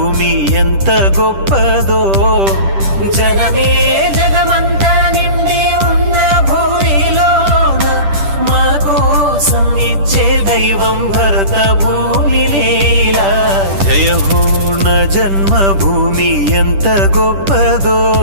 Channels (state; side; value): late; left; 10 ms